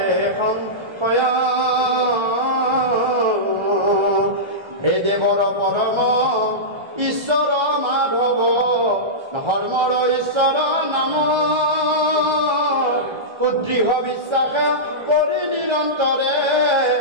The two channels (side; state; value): left; late; 1.3 ms